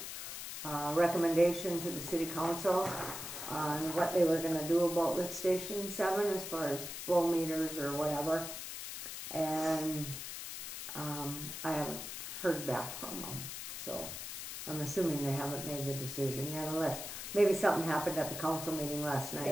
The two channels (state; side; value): noise; left; hiss, 7 dB below the sound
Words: recommendation to the city council on what they were gonna do about lift station 7 as far as flow meters or whatever. And, I haven't heard back from them, so I'm assuming they haven't made the decision yet, unless maybe something happened at the council meeting last night.